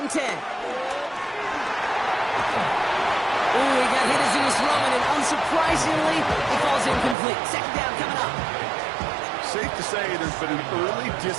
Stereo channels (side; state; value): left; drops out; at 7.2 s